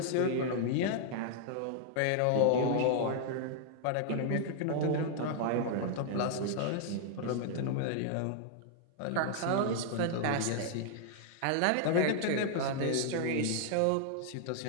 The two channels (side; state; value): both; different; correlation -0.01